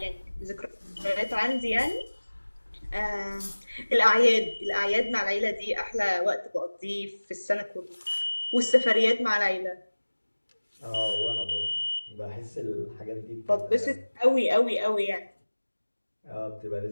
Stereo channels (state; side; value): inverted; both; correlation -1.00